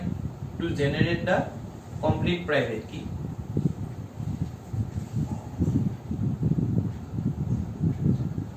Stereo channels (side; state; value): both; identical; correlation 1.00